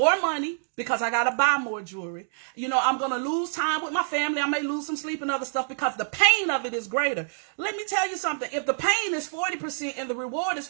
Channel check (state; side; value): silent; left; digital silence